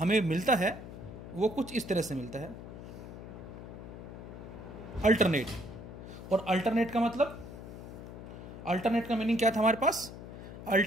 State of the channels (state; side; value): noise; left; hum, 12 dB below the sound